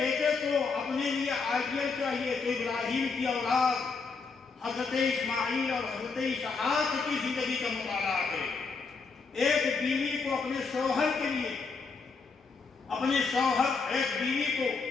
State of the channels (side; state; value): right; quieter; 4.7 dB